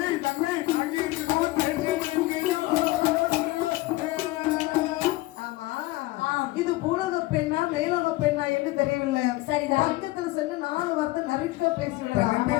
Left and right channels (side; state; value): right; quieter; 19.3 dB